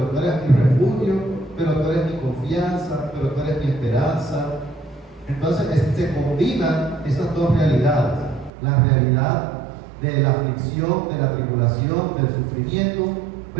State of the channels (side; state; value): left; drops out; at 8.5 s